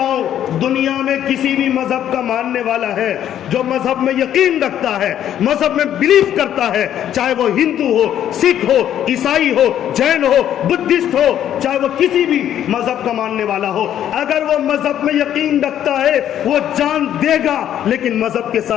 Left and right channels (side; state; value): right; quieter; 10.7 dB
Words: ہوں دنیا میں کسی بھی مذہب کا ماننے والا ہے جو مذہب میں یقین رکھتا ہے، مذہب میں بلیف کرتا ہے، چاہے وہ ہندو ہو، سکھ ہو، عیسائی ہو، جین ہو، بدھسٹ ہو، چاہے وہ کسی بھی مذہب کا ماننے والا ہو، اگر وہ مذہب میں یقین رکھتا ہے وہ جان دے گا لیکن مذہب کے